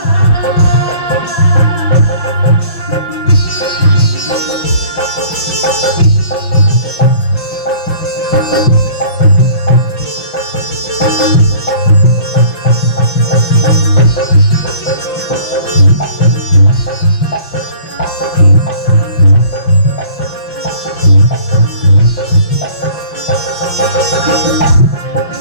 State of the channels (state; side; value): late; right; 5.9 ms